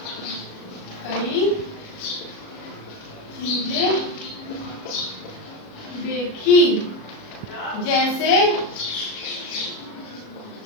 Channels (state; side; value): late; right; 37 ms